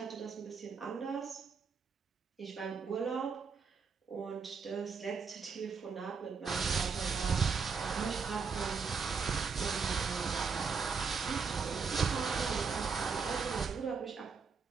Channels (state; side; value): quieter; left; 5.5 dB